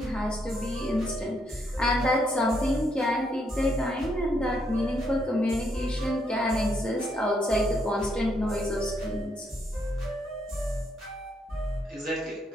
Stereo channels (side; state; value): both; normal; correlation 0.75